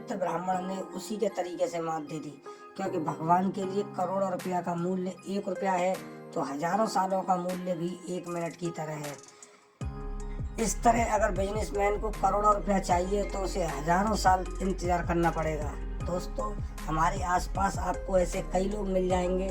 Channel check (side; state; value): both; identical; correlation 1.00